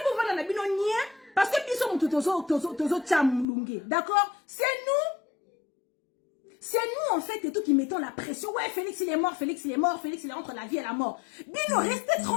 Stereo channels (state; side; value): drops out; right; at 3.5 s